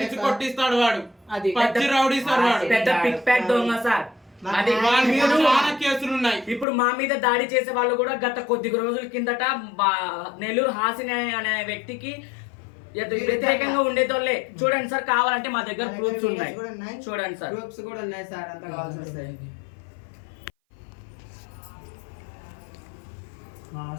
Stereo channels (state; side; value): drops out; right; at 6.7 s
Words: కొట్టిస్తాడు. వాడు అది పచ్చి రౌడీ సార్. వాడు పెద్ద పిక్ ప్యాక్ దొంగ సార్. అది వాళ్ళ మీద చాలా కేసులు ఉన్నాయి. ఇప్పుడు మా మీద దాడి చేసే వాళ్ళు కూడా గత కొద్ది రోజుల కిందట నెల్లూరు హాసిని అనే వ్యక్తికి వ్యతిరేకంగా ఉండేతోళ్ళే. చూడండి సార్, కావాలంటే మా దగ్గర ప్రూఫ్స్ ఉన్నాయి, చూడండి సార్. గ్రూప్స్ కూడా ఉన్నాయి సార్, అంత కావాల్సి వస్తాయి.